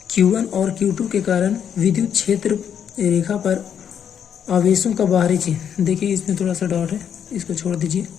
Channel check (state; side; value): quieter; right; 8.4 dB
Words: Q1 और Q2 के कारण विद्युत क्षेत्र रेखा पर आवेशों का बाहरी चिन्ह, देखिए इसमें थोड़ा सा डाउट है, इसको छोड़ दीजिए।